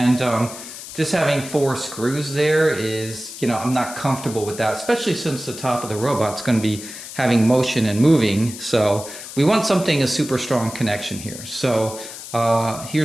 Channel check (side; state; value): left; noise; hiss, 12 dB below the sound